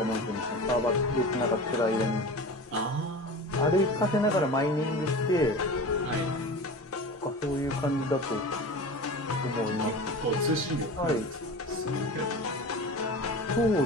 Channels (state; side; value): normal; both; correlation 0.33